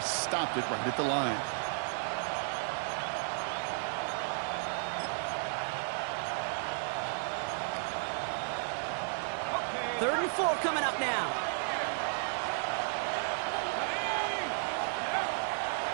stopped it right at the line. Third and 4 coming up now.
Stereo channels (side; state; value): left; silent; digital silence